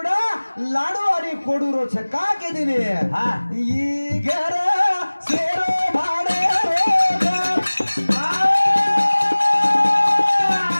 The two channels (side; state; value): both; inverted; correlation -1.00